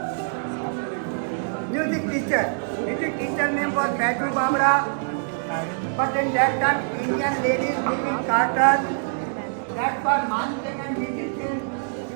Music teacher. Music teacher name was Baitu Bamra. But in that time, Indian ladies live in carters. That's why Man Singh and musicians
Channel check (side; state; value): left; silent; digital silence